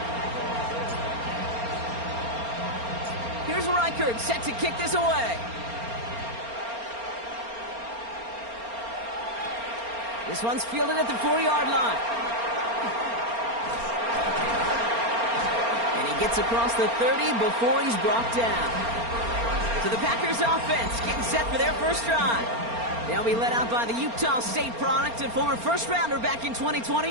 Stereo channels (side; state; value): left; late; 4.3 ms